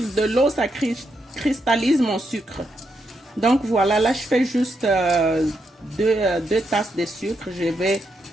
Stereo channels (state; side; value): normal; both; correlation 0.81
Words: l'eau, ça cristallise mon sucre. Donc voilà, là, je fais juste deux tasses de sucre. Je vais